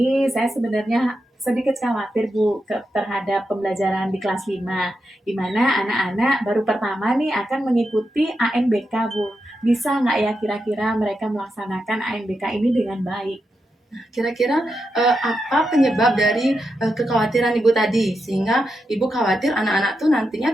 saya sebenarnya sedikit khawatir Bu terhadap pembelajaran di kelas 5, di mana anak-anak baru pertama nih akan mengikuti ANBK Bu. Bisa nggak ya kira-kira mereka melaksanakan ANBK ini dengan baik? Kira-kira apa penyebab dari kekhawatiran Ibu tadi, sehingga Ibu khawatir anak-anak tuh nantinya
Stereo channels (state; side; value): normal; both; correlation 0.87